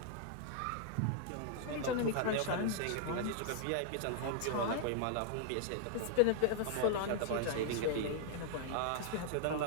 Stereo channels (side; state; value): both; different; correlation -0.01